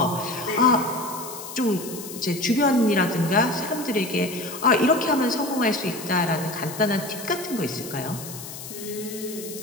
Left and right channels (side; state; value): left; noise; hiss, 11 dB below the sound